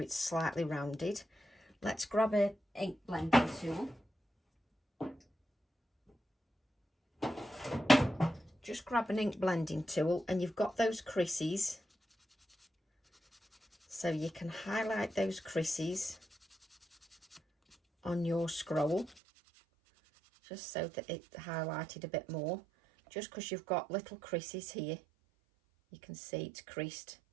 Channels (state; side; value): drops out; left; at 19.2 s